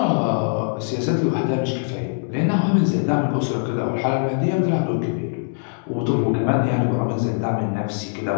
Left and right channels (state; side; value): silent; right; digital silence